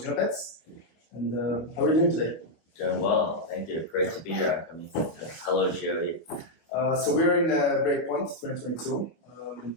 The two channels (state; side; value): late; right; 25 ms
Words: Genopets. And how are you doing today? Doing well, thank you. Great to be here, UnKami. Hello, GOE. So we're in Breakpoint 2022.